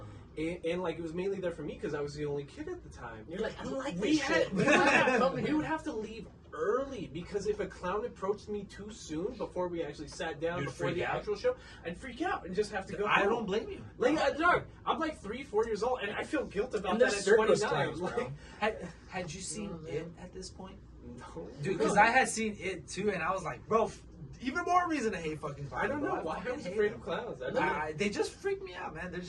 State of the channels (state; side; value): identical; both; correlation 1.00